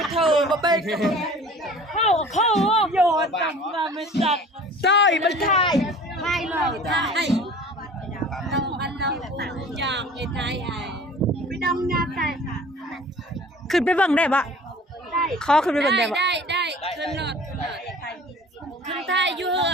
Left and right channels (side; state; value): both; normal; correlation 0.45